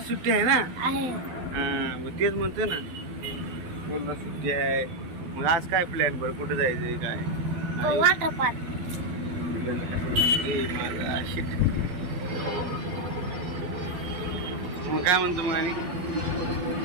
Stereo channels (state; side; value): late; left; 12 ms